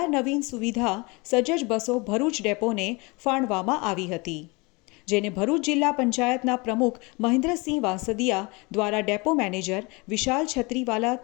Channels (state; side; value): quieter; right; 26.8 dB